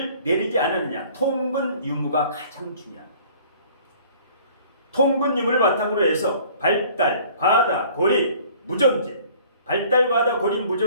내리지 않았느냐, 통근 유무가 가장 중요합니다. 통근 유무를 바탕으로 해서 발달, 과다, 고립, 무존재, 발달, 과다, 고립,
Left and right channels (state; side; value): inverted; both; correlation -0.52